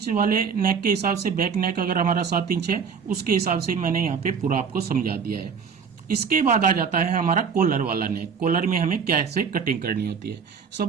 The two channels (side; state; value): left; quieter; 6.3 dB